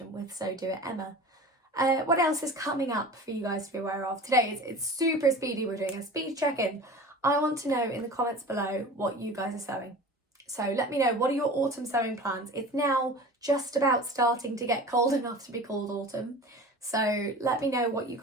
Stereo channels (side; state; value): both; normal; correlation 0.37